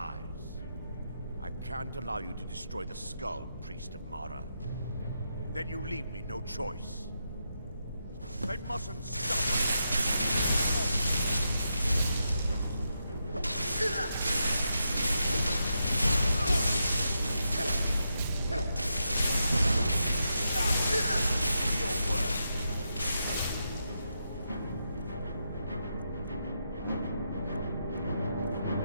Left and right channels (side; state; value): both; inverted; correlation -0.84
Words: I can't allow you to destroy the skull, priest of Mara. Then you leave me no choice. They mustn't stop Do your work.